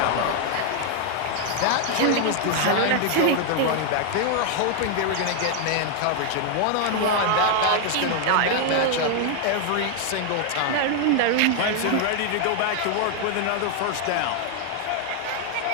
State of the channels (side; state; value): both; different; correlation 0.00